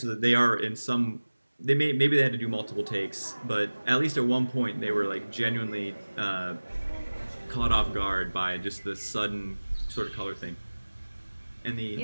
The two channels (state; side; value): inverted; both; correlation -1.00